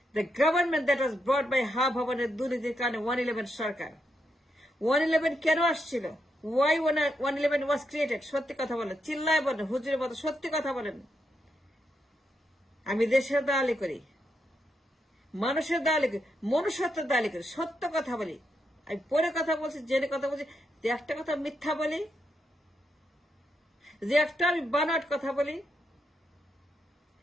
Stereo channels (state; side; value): normal; both; correlation 0.82